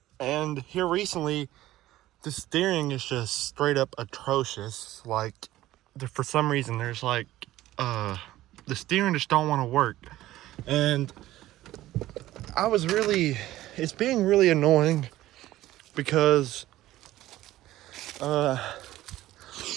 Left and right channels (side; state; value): left; quieter; 15.3 dB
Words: And here recently, the steering is just straight up atrocious. Like, for some reason, there's like the steering just don't want to work. And it's being really annoying because a